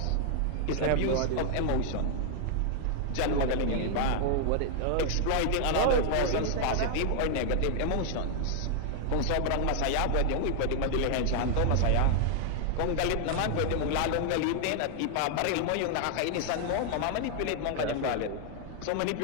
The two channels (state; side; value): different; both; correlation 0.00